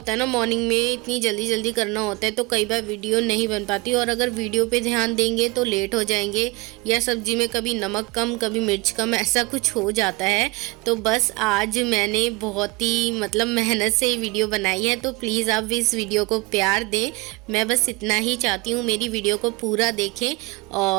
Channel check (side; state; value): left; quieter; 24.3 dB